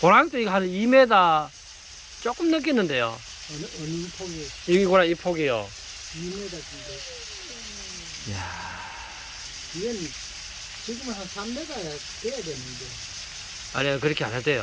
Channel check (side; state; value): both; identical; correlation 1.00